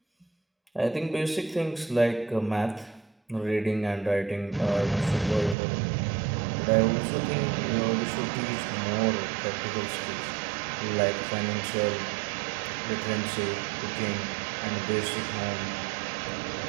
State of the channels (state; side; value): drops out; left; at 5.6 s